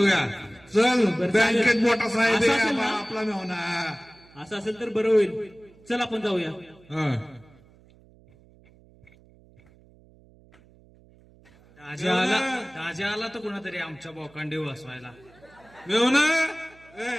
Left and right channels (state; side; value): noise; right; hum, 27 dB below the sound